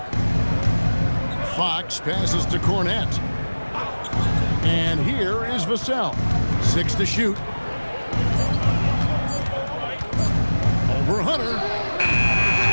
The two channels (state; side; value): inverted; both; correlation -1.00